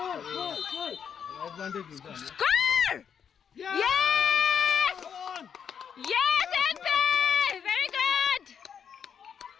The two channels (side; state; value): right; quieter; 7.6 dB